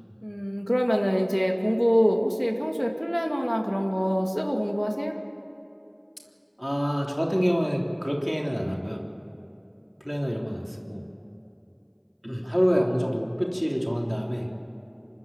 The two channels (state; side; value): identical; both; correlation 1.00